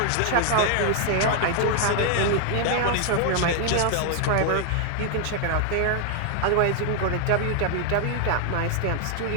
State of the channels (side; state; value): both; different; correlation 0.00